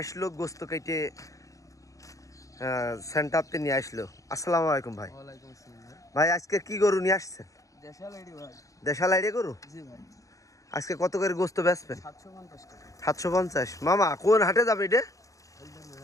গোস্ত কেটে সেন্টারতে নিয়ে আসলো। আসসালামু আলাইকুম ভাই। ভাই আজকে কি গরু নিয়ে আসছেন? দেশাল আইডিয়া গরু। আজকে কত করে গোস্ত বেচবেন? 750। মামা কোন হাটে যাবে এটা?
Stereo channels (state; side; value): late; right; 0.16 ms